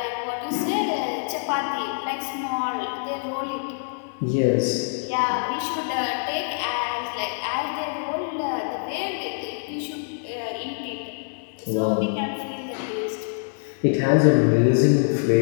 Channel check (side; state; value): right; silent; 62 dB below the other